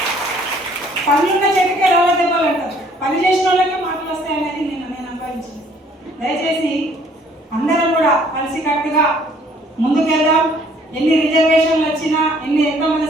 పనులున్న చెట్టుకే రాళ్ళ దెబ్బలు అంటారు, పని చేసిన వాళ్ళకే మాటలు వస్తాయనేది నేను అనుభవించింది. దయచేసి అందరం కూడా కలిసికట్టుగా ముందుకెళ్దాం. ఎన్ని రిజర్వేషన్లు వచ్చినా ఎంతమంది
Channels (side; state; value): both; normal; correlation 0.60